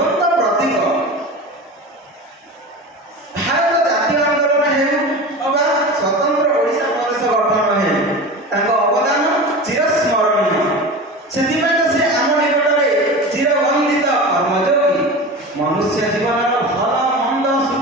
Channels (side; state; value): both; normal; correlation 0.30